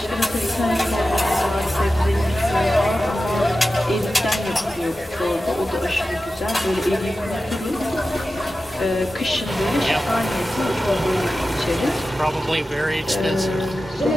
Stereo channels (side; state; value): both; normal; correlation 0.93